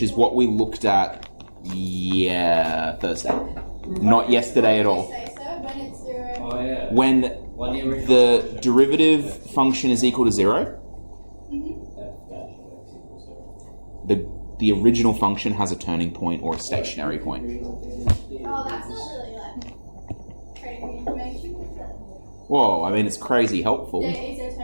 is what we looked at, Thursday, not yesterday at all. Say so when it's 0. Oh yeah. When the derivative function is equal to 0, the original function has a turning point or a stationary point. Oh, that's not really crazy information, is it? Whoa, I mean, it's crazy helpful. There is a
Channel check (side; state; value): both; inverted; correlation -1.00